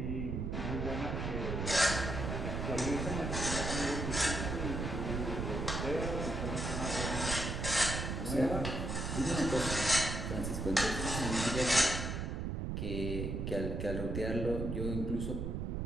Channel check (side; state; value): right; noise; rumble, 2 dB below the sound